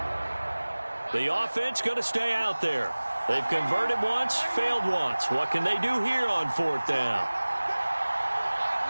The offense going to stay out there. They've converted once, failed once. What can they do here on 4th down?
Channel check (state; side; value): inverted; both; correlation -1.00